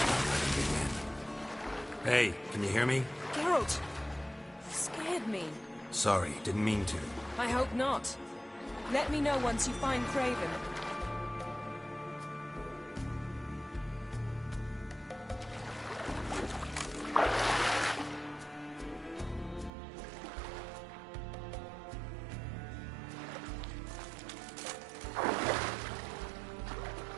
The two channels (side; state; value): left; drops out; at 19.7 s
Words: Hey, can you hear me? Geralt! You scared me. Sorry, didn't mean to. I hope not. Let me know once you find Craven.